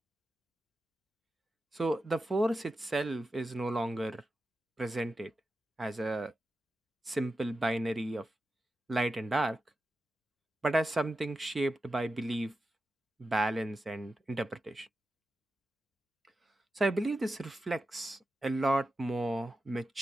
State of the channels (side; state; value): both; normal; correlation 0.91